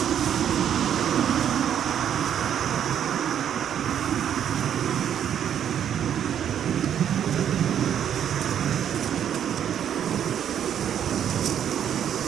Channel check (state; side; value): quieter; left; 9.4 dB